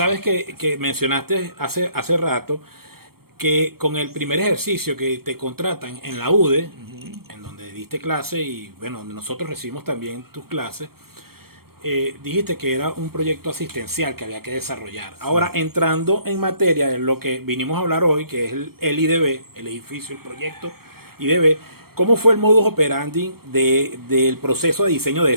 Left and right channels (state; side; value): late; left; 0.94 ms